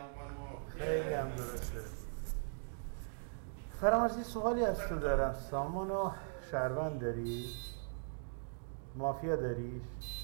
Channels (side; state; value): left; silent; digital silence